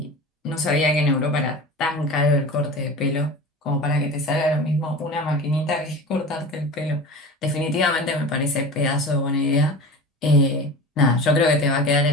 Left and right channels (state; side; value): normal; both; correlation 0.34